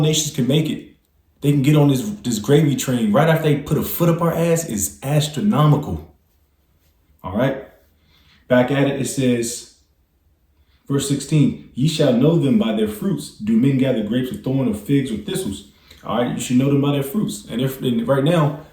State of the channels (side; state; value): both; identical; correlation 1.00